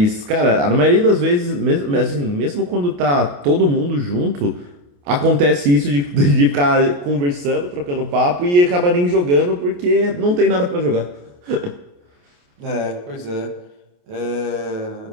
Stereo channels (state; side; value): late; left; 28 ms